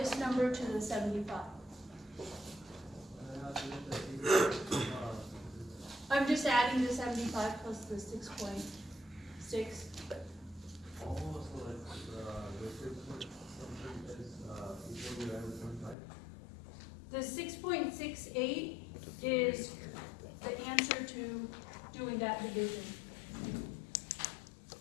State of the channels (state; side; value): drops out; right; at 16.0 s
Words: number to the 75. I'm just adding the 75 plus the 6.6. The 6.68 is the answer to doing that division.